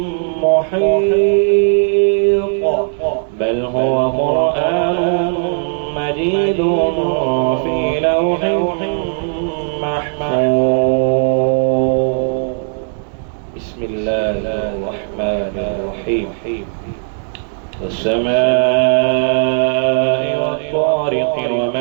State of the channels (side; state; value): left; silent; digital silence